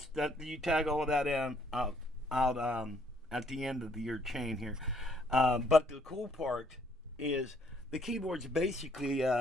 you tag all of that in out at the end of your chain here. But the cool part is the keyboard's basically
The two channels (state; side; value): normal; both; correlation 0.66